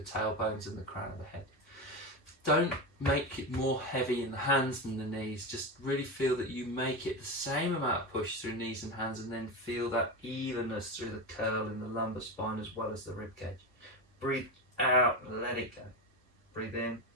tailbones and the crown of the head. don't make it more heavy in the hands than the knees. Just really feel that you make it the same amount of push through knees and hands, and then feel that evenness through the curl in the lumbar spine as well as the rib cage. Breathe out, let it go. Breathe in,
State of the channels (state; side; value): normal; both; correlation 0.18